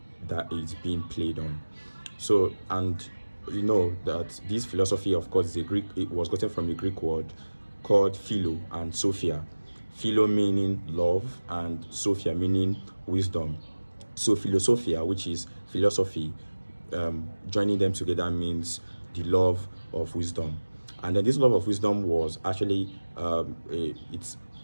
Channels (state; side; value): inverted; both; correlation -1.00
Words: that is being played on. So, and you know that this philosophy, of course, is a Greek. It was gotten from a Greek word called philo and sophia. Philo meaning love, and sophia meaning wisdom. So philosophia, which is philosophy, joining them together means the love of wisdom. And then this love of wisdom was actually